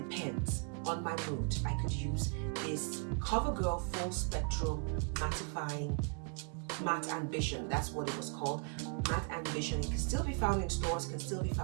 on my mood. I could use this Covergirl Full Spectrum Mattifying Matte Ambition. That's what it was called, Matte Ambition. It can still be found in stores, can still be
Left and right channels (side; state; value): left; quieter; 39.8 dB